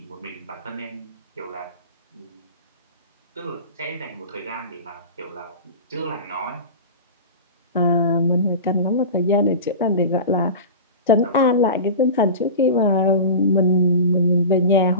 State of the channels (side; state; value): both; inverted; correlation -0.31